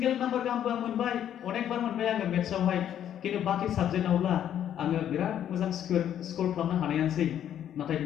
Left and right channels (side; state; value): right; quieter; 10.3 dB